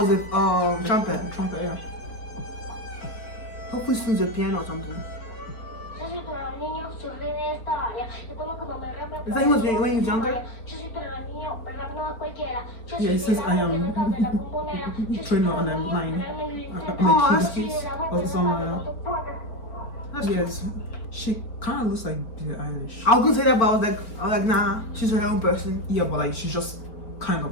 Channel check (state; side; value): late; right; 4.4 ms